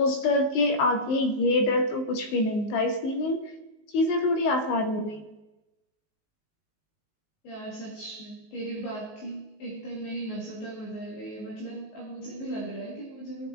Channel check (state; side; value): late; right; 19 ms